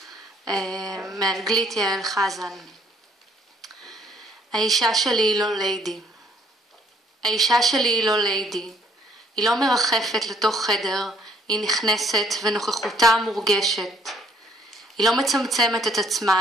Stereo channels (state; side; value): normal; both; correlation 0.64